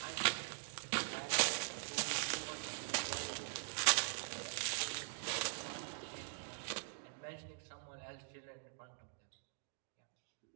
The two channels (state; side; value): silent; left; digital silence